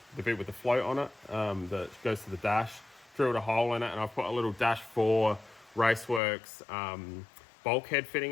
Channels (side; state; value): right; drops out; at 6.2 s